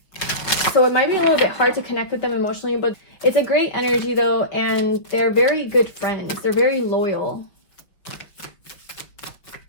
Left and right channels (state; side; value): late; right; 5.8 ms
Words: So it might be a little bit hard to connect with them emotionally, but it's a great energy though, and they're very good friends. They're very loyal.